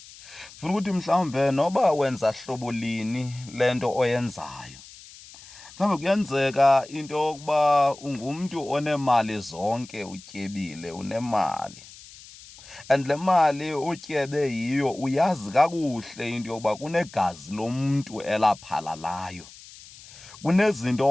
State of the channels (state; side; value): noise; left; hiss, 19 dB below the sound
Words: Funa ukuthi mhlawumbe noba wenza hlobo lini le nto oyenzayo, mhlawumbe kuyenzeka into yokuba ungumntu onemali zonke, utyebile, unemali. And le mali utyebe yiyo uyazi kakuhle into yokuba kunegazi lomntu elaphalalayo.